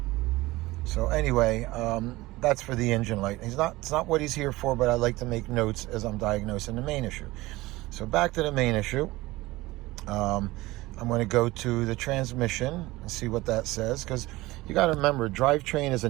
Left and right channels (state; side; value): quieter; left; 19.6 dB